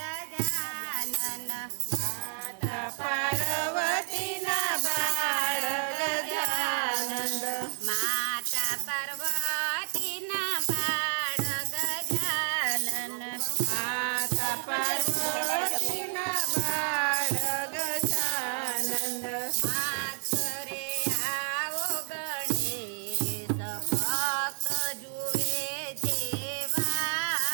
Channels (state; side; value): silent; left; 58 dB below the other